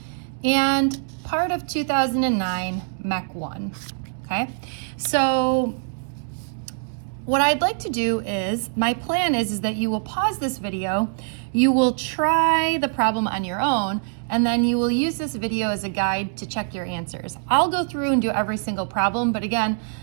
and part of 2009 Mech 1. Okay, so what I'd like to do is, my plan is that you will pause this video, you will try the problem on your own, and then you will use this video as a guide to check your answers. I'll go through and do every single problem, but again,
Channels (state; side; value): silent; left; 63 dB below the other